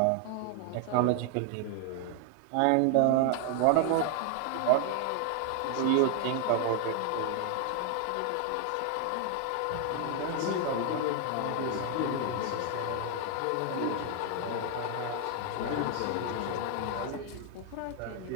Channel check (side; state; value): both; different; correlation 0.00